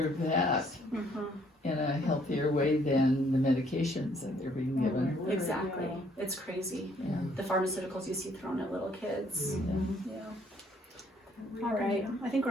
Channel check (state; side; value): normal; both; correlation 0.65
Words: that in a healthier way than the medications that they're being given. Exactly. It's crazy. Yeah. The pharmaceuticals you see thrown at little kids. Yeah. Yeah. All right. I think we're